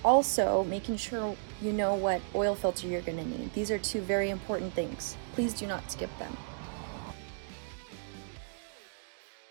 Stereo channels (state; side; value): silent; left; digital silence